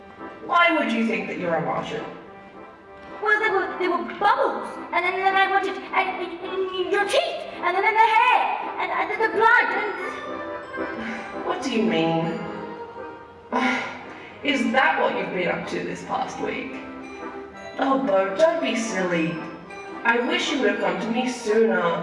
Why would you think that you're a Martian? Well, there were bubbles, and then I wanted and your teeth, and then the hair, and the blood, and... What do you mean? Is that what you've been up to this past week? Oh, Bo, don't be silly. I wish you would have come to me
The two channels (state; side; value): identical; both; correlation 1.00